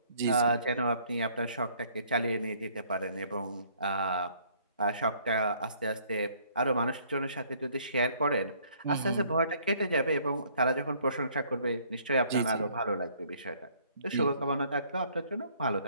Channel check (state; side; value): inverted; both; correlation -0.61